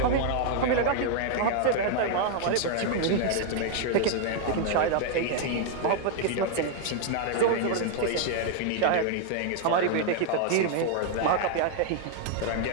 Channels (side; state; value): both; different; correlation 0.00